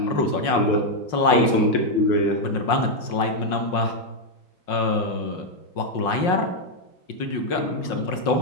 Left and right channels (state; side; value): late; right; 5.6 ms